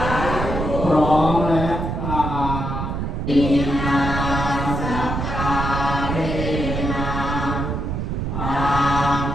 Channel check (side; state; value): right; noise; rumble, 3 dB below the sound